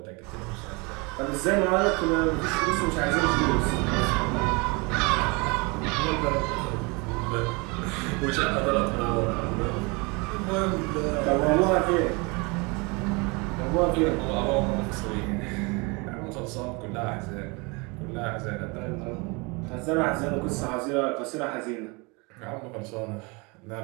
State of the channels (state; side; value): quieter; left; 28.5 dB